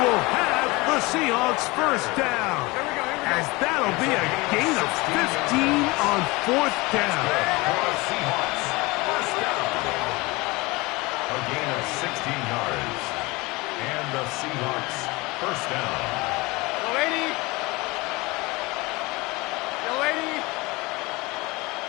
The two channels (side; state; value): right; quieter; 23.6 dB